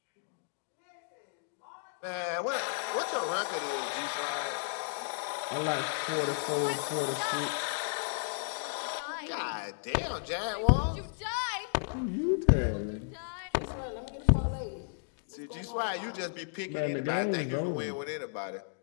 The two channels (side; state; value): right; silent; digital silence